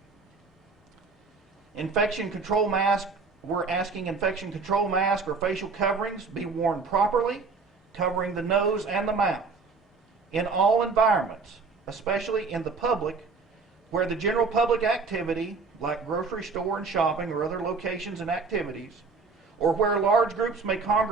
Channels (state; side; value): quieter; left; 4.5 dB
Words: infection control mask, we're asking infection control mask or facial coverings be worn properly, covering the nose and the mouth in all environments, especially in the public, where the general public activity, like grocery store and shopping or other locations and activities, or where large groups may